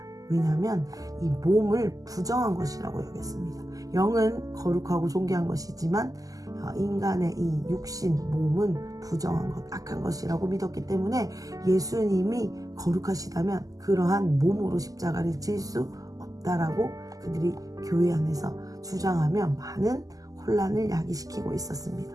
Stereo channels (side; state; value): left; late; 0.17 ms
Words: 왜냐하면 이 몸을 부정한 것이라고 여겼습니다. 영은 거룩하고 존귀한 것이지만 인간의 이 육신, 몸은 부정한 것, 악한 것이라고 믿었기 때문에 예수님이 거룩하시다면 그러한 몸으로 십자가를 질 수 없다라고 그들이 교회 안에서 주장하며 많은 혼란을 야기시키고